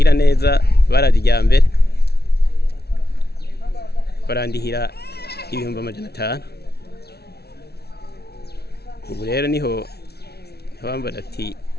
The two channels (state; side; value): late; right; 0.47 ms